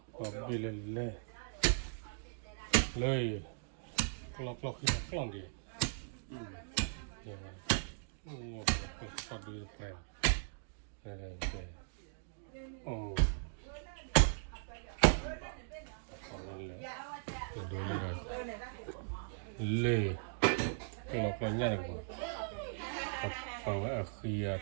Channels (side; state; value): left; silent; digital silence